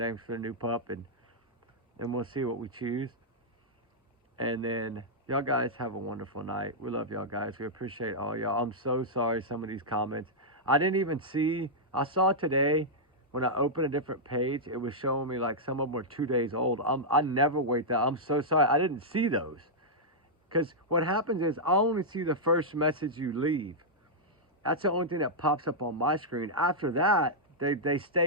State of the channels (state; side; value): normal; both; correlation -0.08